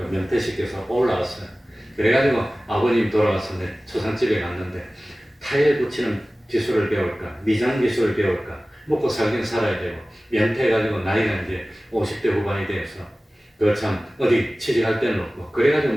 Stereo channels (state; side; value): normal; both; correlation 0.97